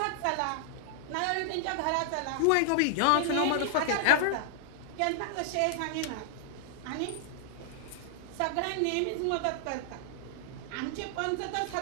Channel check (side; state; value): both; different; correlation 0.00